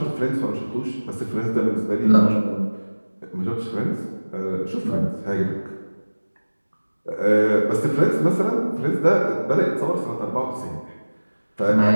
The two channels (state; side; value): inverted; both; correlation -1.00